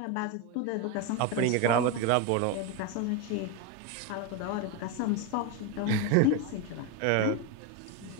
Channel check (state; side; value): different; both; correlation 0.03